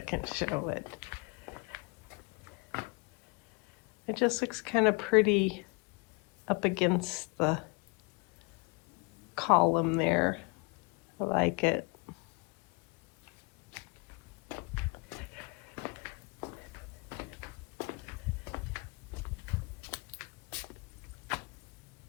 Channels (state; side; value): quieter; right; 30.8 dB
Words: show it. It just looks kind of pretty up against the column there. I like it.